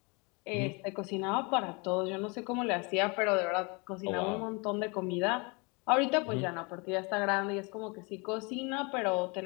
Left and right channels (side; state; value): right; quieter; 30.1 dB